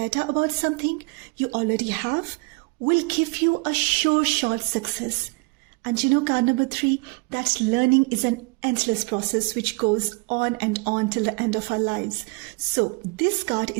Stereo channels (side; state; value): left; quieter; 29.1 dB